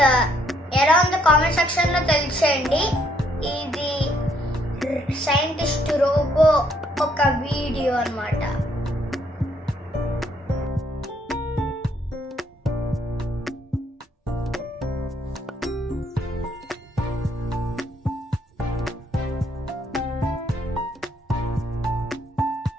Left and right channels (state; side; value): normal; both; correlation 0.70